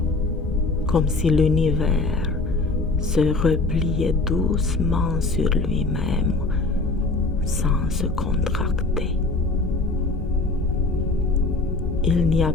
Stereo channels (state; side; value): quieter; right; 3.3 dB